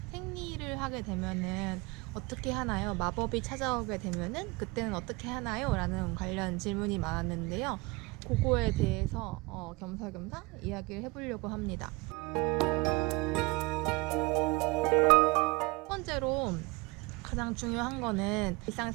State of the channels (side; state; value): left; quieter; 24.7 dB